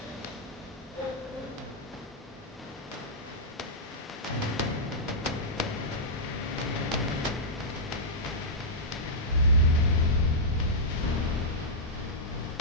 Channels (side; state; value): both; normal; correlation -0.11